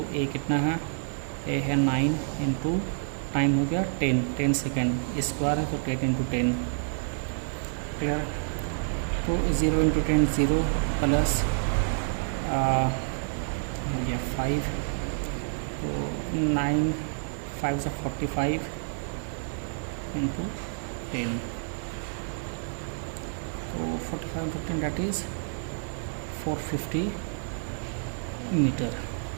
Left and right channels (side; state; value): left; silent; digital silence